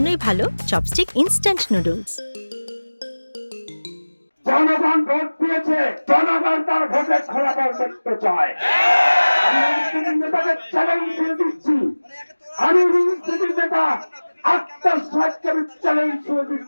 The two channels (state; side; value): inverted; both; correlation -1.00